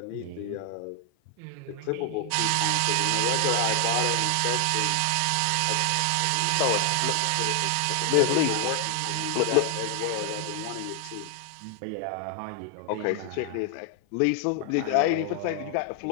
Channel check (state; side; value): different; both; correlation 0.00